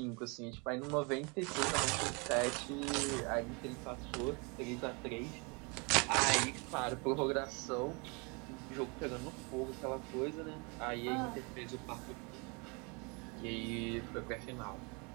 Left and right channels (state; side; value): quieter; left; 31.4 dB